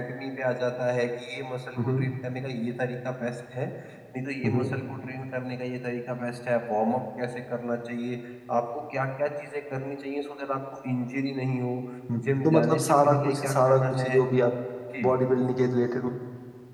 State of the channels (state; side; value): identical; both; correlation 1.00